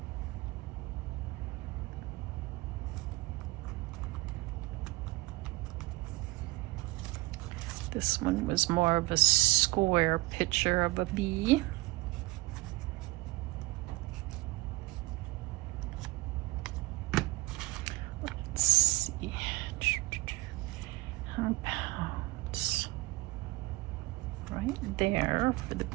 This one was more of a square picture of a bee. Let's see. How about right there for the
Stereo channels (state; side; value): quieter; left; 21.5 dB